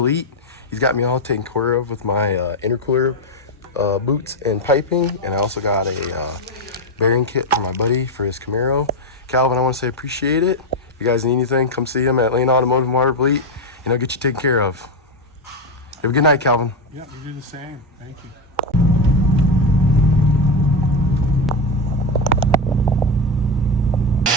Elite. He's got me all taken care of with my intercooler boots and piping. And I also got a bearing kit for my buddy for his Camaro. Calvin, I want to say appreciate it. If you guys need anything, come see him at Lane Automotive in Waterville Elite, and he'll get you taken care of. Have a good night, Calvin. Yeah, you do the same. Thank you.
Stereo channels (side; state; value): both; normal; correlation 0.09